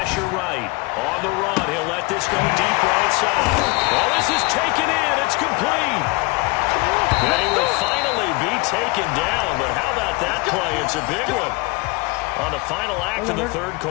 right. On the run, he'll let this go deep right side. Well, this is taken in. It's complete. And he will finally be taken down. But how about that play? It's a big one on the final act of the third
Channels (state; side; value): quieter; right; 26.4 dB